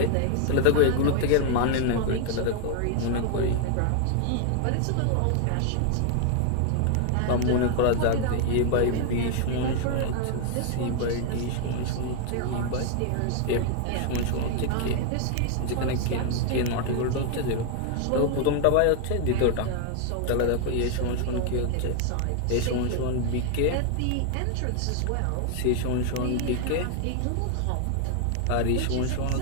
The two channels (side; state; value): both; different; correlation 0.00